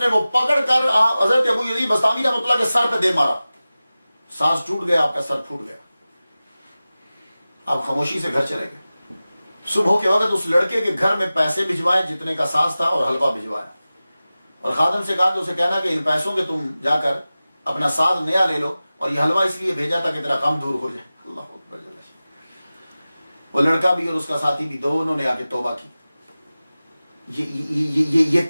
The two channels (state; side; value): inverted; both; correlation -0.96